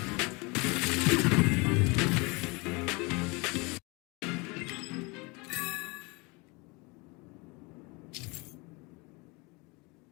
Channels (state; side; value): quieter; right; 27.5 dB